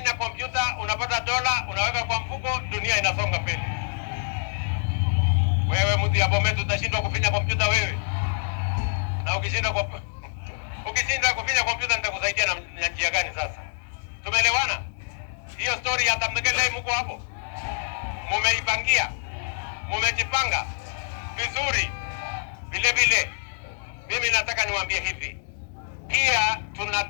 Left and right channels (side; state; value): right; silent; 60 dB below the other